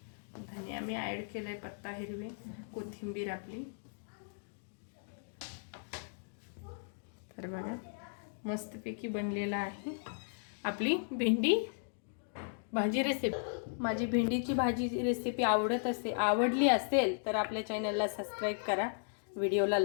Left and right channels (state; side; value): silent; right; digital silence